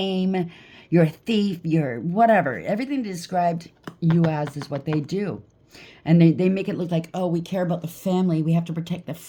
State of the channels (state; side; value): identical; both; correlation 1.00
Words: You're a thief. You're whatever. Everything they described you as is what they do. And they make it look like, oh, we care about the family. We have to protect the